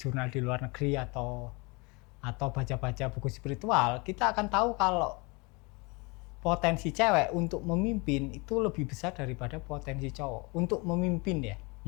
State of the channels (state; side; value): quieter; right; 28.1 dB